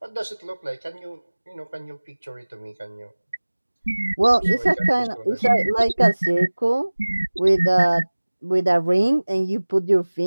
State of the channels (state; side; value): inverted; both; correlation -1.00